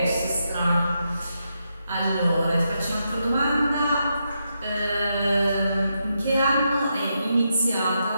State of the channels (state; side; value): inverted; both; correlation -0.83